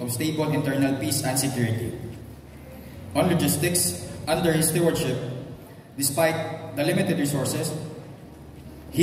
of stable internal peace and security. On logistics, under his stewardship, despite the limited resources,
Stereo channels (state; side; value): identical; both; correlation 1.00